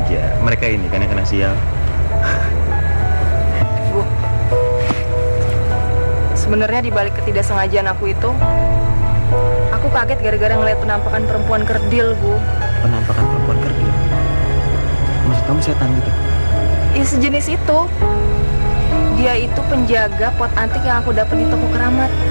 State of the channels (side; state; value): both; inverted; correlation -1.00